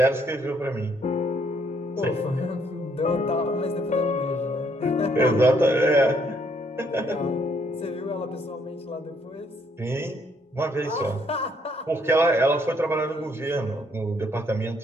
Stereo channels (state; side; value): normal; both; correlation 0.69